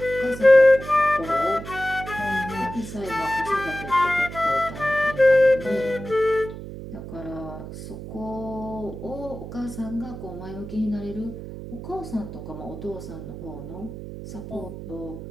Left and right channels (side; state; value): right; noise; hum, 10 dB below the sound